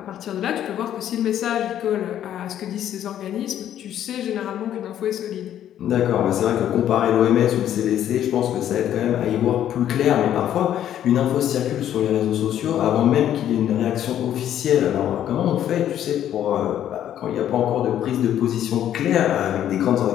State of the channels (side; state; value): right; quieter; 10.9 dB